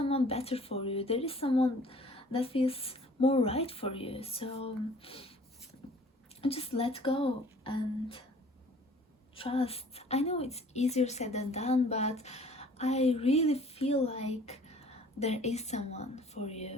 better for you. There is someone that feels more right for you. So just let go and trust. I know it's easier said than done, but I really feel like there is someone for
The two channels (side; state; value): both; normal; correlation 0.52